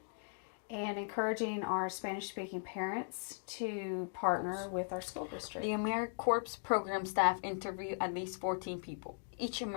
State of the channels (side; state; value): right; silent; digital silence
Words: and encouraging our Spanish-speaking parents to partner with our school district. The AmeriCorps program staff interview at least 14 people. Each